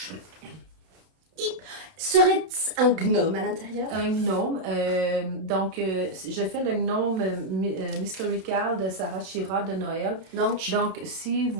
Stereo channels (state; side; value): late; left; 31 ms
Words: Serait-ce un gnome à l'intérieur? Un gnome. Donc, je fais le gnome Mysterical de Sarah Shira de Noël. Donc, Donc, si